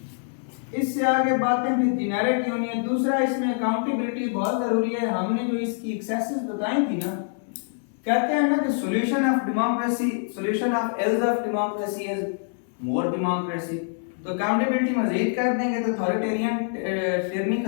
इससे आगे बातें भी जेनरिक होनी है। दूसरा, इसमें अकाउंटेबिलिटी बहुत जरूरी है। हमने जो इसकी एक्सेसेस बताई थी ना, कहते हैं ना कि solution of democracy, solution of ills of democracy is more democracy. तो अकाउंटेबिलिटी मजीद कर देंगे तो अथॉरिटेरियन टिरनी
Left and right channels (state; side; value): silent; right; digital silence